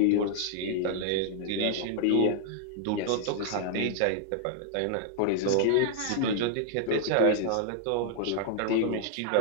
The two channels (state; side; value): different; both; correlation 0.00